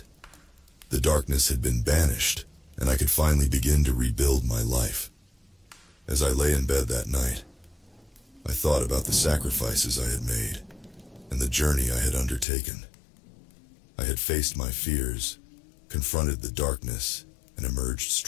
The darkness had been banished, and I could finally begin to rebuild my life. As I lay in bed that night, I thought about the sacrifices I had made and the journey I had undertaken. I had faced my fears, confronted the darkness, and emerged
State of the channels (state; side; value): drops out; right; at 12.5 s